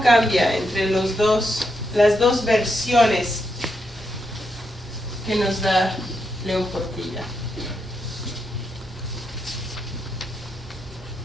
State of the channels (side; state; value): both; normal; correlation 0.82